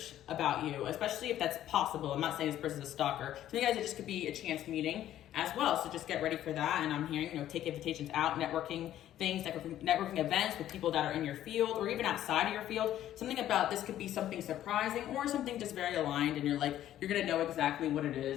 about you, especially if that's possible. I'm not saying this person's a stalker. So you guys, it just could be a chance meeting as well. So just get ready for that. And I'm hearing, you know, take invitations out, networking things, networking events with people that are in your field or even outside of your field. Something about this could be something surprising or something just very aligned. And you're like, you're going to know exactly what it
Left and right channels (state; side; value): quieter; right; 12.2 dB